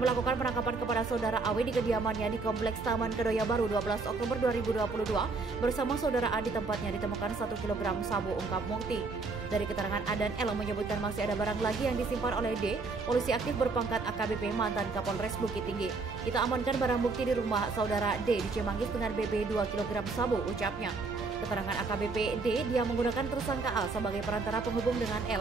penangkapan kepada saudara Awi di kediamannya di Kompleks Taman Kedoya Baru 12 Oktober 2022. Bersama saudara A di tempatnya ditemukan 1 kg sabu, ungkap Mukti. Dari keterangan A dan L menyebutkan masih ada barang lagi yang disimpan oleh D, polisi aktif berpangkat AKBP mantan Kapolres Bukit Tinggi. Kita amankan barang bukti di rumah saudara D di Cimanggis dengan BB 2 kg sabu, ucapnya. Keterangan AKBP D, dia menggunakan tersangka A sebagai perantara penghubung dengan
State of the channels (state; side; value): quieter; left; 4.0 dB